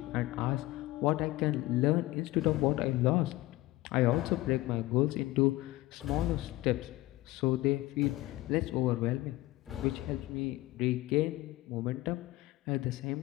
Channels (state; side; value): quieter; right; 18.4 dB